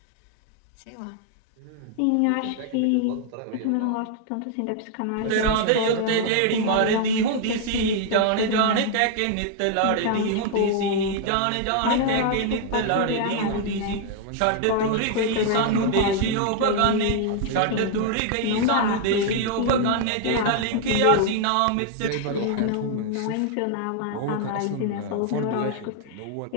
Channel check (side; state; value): both; different; correlation 0.00